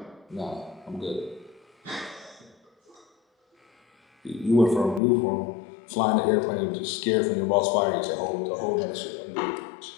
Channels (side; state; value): right; drops out; at 5.0 s